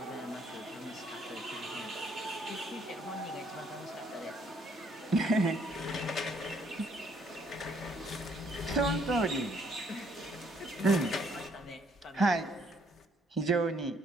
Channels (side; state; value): both; normal; correlation 0.66